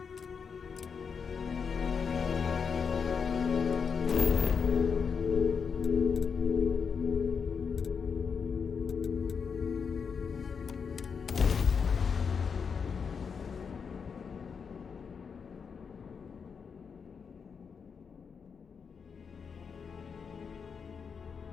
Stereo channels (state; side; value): quieter; right; 6.1 dB